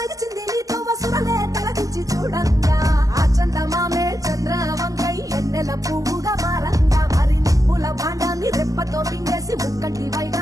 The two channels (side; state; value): left; late; 0.17 ms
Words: నీతో వసురలే తలదించి చూడంగా ఆ చందమామే చంద్రవంకై ఎన్నెల పువ్వుగా మారంగా మరి నిప్పుల భాండాన్ని రెప్పతో మింగేసి ముక్కంటి